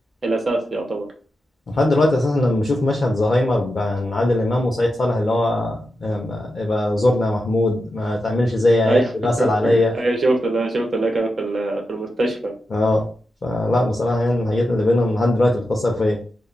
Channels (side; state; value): both; normal; correlation 0.89